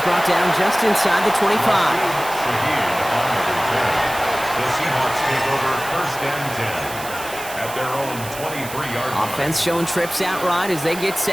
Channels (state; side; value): noise; right; hiss, 12 dB below the sound